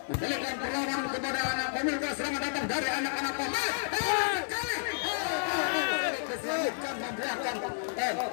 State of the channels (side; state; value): right; silent; 57 dB below the other